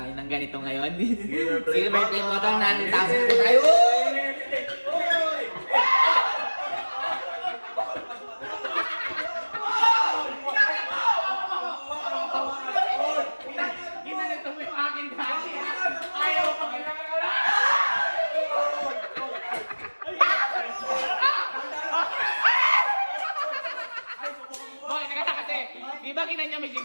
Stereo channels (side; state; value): both; inverted; correlation -1.00